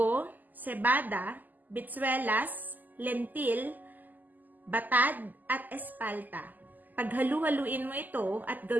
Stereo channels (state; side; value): late; left; 0.084 ms